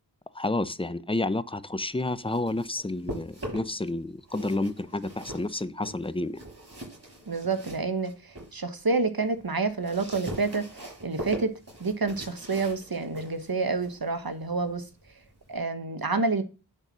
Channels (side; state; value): both; normal; correlation 0.09